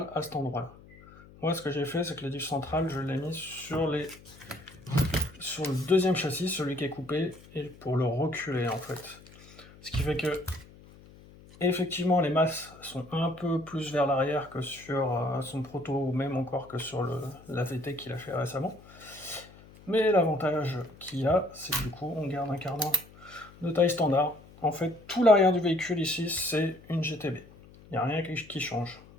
à cet endroit-là. Moi, ce que j'ai fait, c'est que le diff central, je l'ai mis sur le deuxième châssis, celui qui est coupé, et pour le reculer en fait. Ce qui fait que, effectivement, les masses sont un peu plus vers l'arrière que sur son proto, ou même encore que sur la VT qu'il a fait récemment. Mais l'avantage qu'il y a, c'est que du coup, on garde un cardan de taille standard. En fait, tout l'arrière du véhicule ici, c'est une GTB. Il n'y a rien qui change.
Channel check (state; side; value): noise; left; hum, 22 dB below the sound